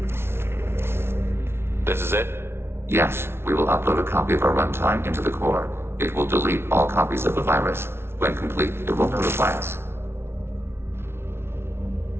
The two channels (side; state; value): left; late; 0.12 ms